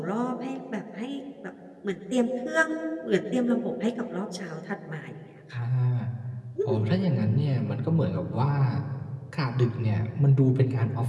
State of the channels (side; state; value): both; identical; correlation 1.00